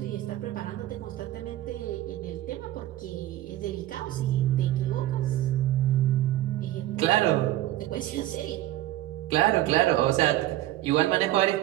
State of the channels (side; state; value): left; quieter; 15.0 dB